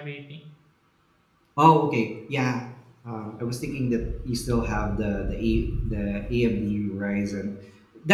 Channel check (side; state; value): both; identical; correlation 1.00